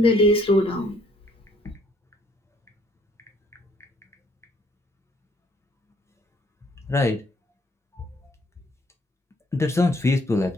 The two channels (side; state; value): both; normal; correlation 0.65